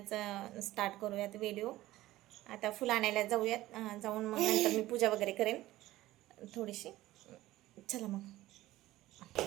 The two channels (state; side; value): quieter; left; 16.3 dB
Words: स्टार्ट करूयात व्हिडिओ. आता फुलं आणायला जाऊयात. जाऊन मग नंतर मी पूजा वगैरे करेन थोडीशी. चला मग.